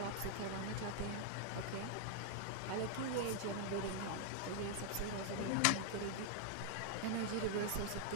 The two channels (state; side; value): different; both; correlation 0.00